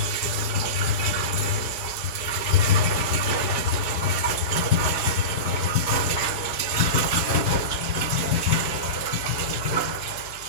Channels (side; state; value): right; late; 4.8 ms